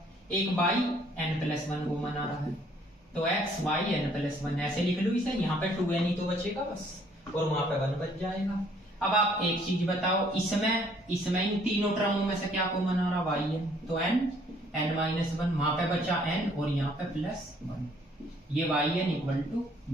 एक yn प्लस 1 कॉमन आ रहा है, तो x yn प्लस 1 ऐसे लिख लो इसे। यहाँ पे 2n ही तो बचेगा बस और वहां पे 1 बच जाएगा। अब आप एक चीज बताओ, इसमें इन तीनों टर्मों में से क्या कॉमन आ रहा है, yn, तो n माइनस 1, वहां पे बचा n और यहाँ पे प्लस 1, ये yn equal to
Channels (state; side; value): normal; both; correlation 0.62